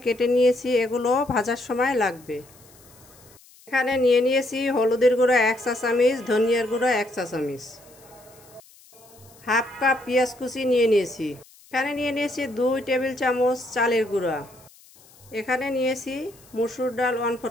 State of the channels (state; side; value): noise; left; hiss, 26 dB below the sound